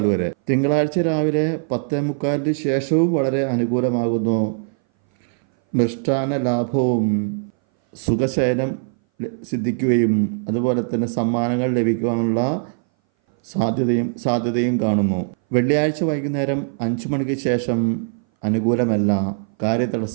വരെ. തിങ്കളാഴ്ച രാവിലെ 10:45 ശേഷവും വളരെ അനുകൂലമാകുന്നു. മൃഷ്ടാന ലാഭവും സുഖശയനം സിദ്ധിക്കുകയും അതുപോലെ തന്നെ സമ്മാനങ്ങൾ ലഭിക്കുവാനുള്ള സാധ്യതയും കാണുന്നു. വെള്ളിയാഴ്ച വൈകുന്നേരം 5 മണിക്ക് ശേഷം അനുകൂലമല്ല.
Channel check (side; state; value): left; silent; 60 dB below the other